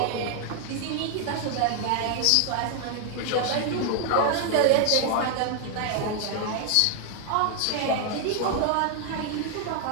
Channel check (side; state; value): both; different; correlation 0.00